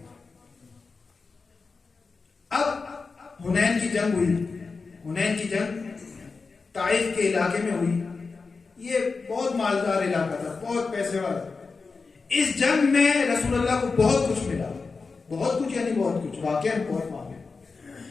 اب حنین کی جنگ ہوئی. حنین کی جنگ طائف کے علاقے میں ہوئی. یہ بہت مالدار علاقہ تھا، بہت پیسے والا. اس جنگ میں رسول اللہ کو بہت کچھ ملا، بہت کچھ یعنی بہت کچھ، واقعا بہت مانگے.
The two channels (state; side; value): quieter; right; 4.4 dB